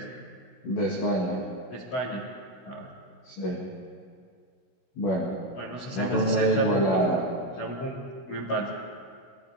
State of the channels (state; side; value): late; right; 16 ms